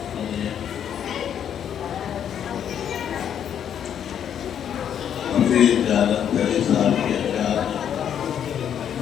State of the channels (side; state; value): right; quieter; 9.1 dB